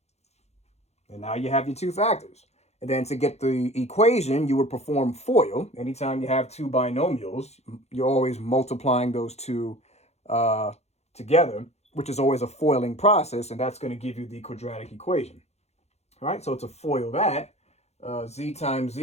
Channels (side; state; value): right; late; 0.31 ms